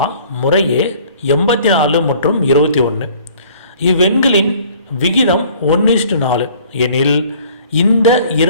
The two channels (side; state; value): both; inverted; correlation -0.53